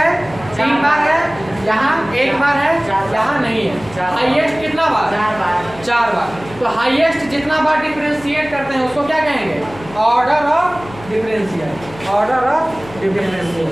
3 बार है, यहाँ 1 बार है, यहाँ नहीं है। हाईएस्ट कितना बार? 4 बार। तो हाईएस्ट जितना बार डिफरेंशिएट करते हैं उसको क्या कहेंगे? Order of differential. Order of differential.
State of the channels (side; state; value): left; noise; hum, 18 dB below the sound